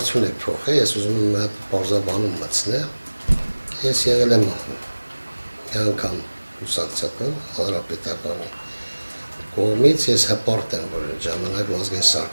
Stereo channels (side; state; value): both; inverted; correlation -1.00